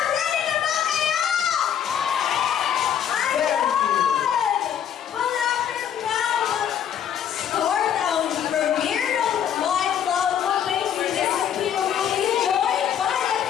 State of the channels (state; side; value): quieter; right; 9.2 dB